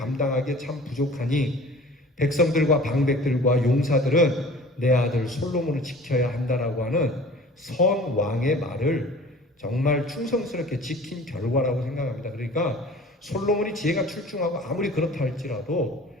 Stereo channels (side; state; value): both; normal; correlation 0.45